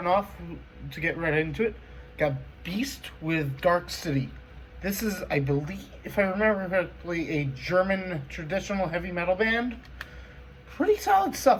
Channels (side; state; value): both; identical; correlation 1.00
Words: off, to get right into it, got Beast with Dark City. This is, I believe, if I remember correctly, a German traditional heavy metal band. Pretty solid